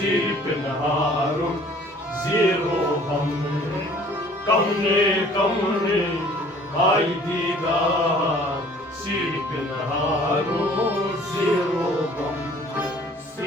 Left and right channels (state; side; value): normal; both; correlation 0.53